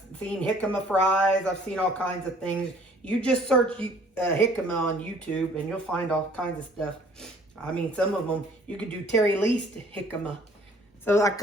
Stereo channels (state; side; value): normal; both; correlation 0.56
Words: seen jicama fries. I've seen all kinds of things. You just search jicama on YouTube and you'll find all kinds of stuff. I mean, some of them, you could do Terri Leist jicama. So I